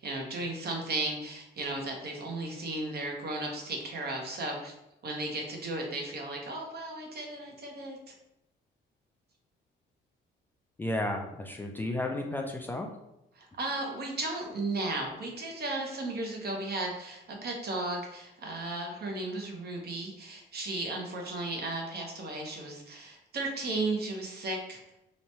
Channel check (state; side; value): normal; both; correlation 0.38